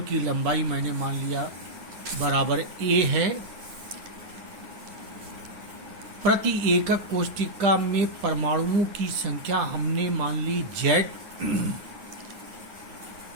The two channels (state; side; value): late; left; 9.9 ms